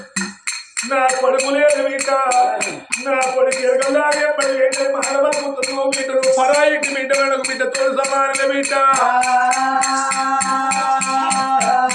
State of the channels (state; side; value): identical; both; correlation 1.00